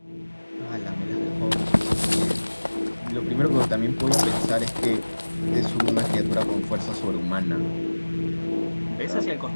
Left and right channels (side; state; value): both; inverted; correlation -1.00